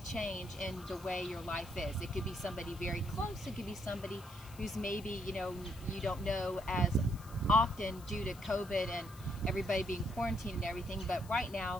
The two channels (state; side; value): noise; left; hiss, 20 dB below the sound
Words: change in the way your life is. It could be somebody very close. It could be somebody who's maybe, you don't know as often due to COVID and everybody being quarantined and everything, but right